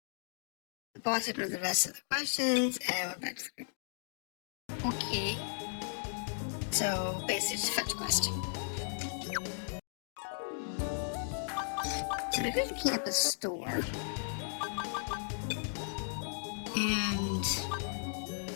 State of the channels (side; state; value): right; silent; digital silence